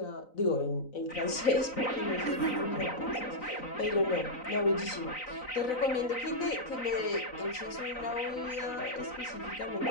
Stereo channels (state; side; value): late; right; 3.9 ms